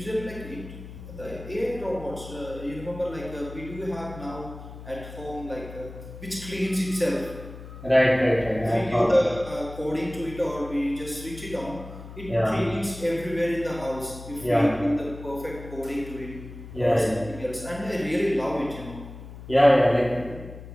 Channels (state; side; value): noise; left; hum, 13 dB below the sound